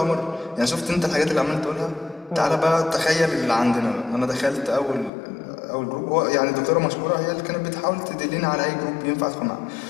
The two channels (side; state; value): right; drops out; at 5.1 s